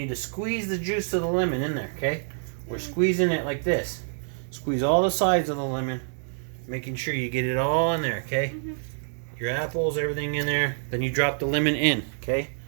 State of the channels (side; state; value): left; silent; digital silence